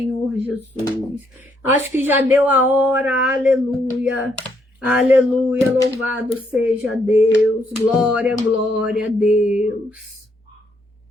Jesus. Acho que já deu a hora, aleluia. Aleluia, louvado seja Deus. Glória, glória a Deus.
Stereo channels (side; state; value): both; normal; correlation 0.73